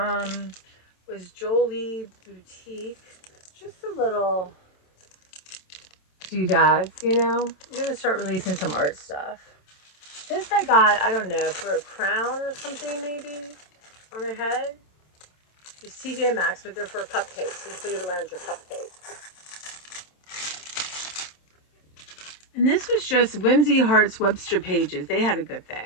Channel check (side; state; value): right; late; 27 ms